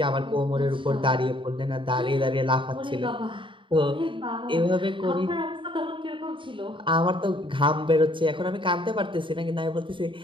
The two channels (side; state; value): left; late; 0.24 ms